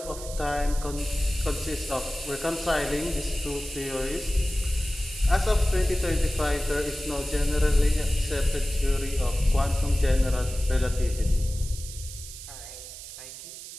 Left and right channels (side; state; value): right; noise; hiss, 12 dB below the sound